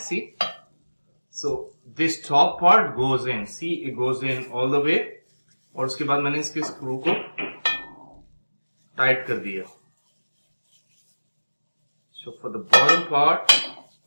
So this top part goes in. See, it goes in all the way. और उसके बाद मैंने इसके screw को tight कर दिया. So for the bottom part,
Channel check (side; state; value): both; inverted; correlation -1.00